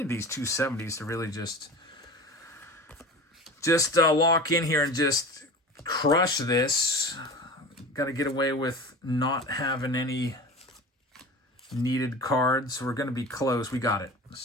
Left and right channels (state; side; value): normal; both; correlation 0.34